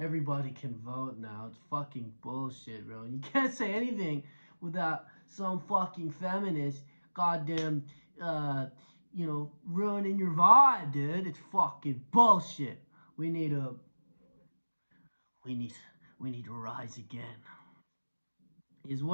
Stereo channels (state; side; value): inverted; both; correlation -1.00